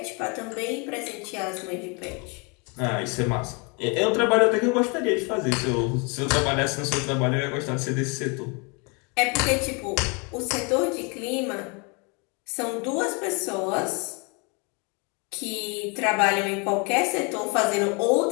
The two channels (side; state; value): right; quieter; 32.1 dB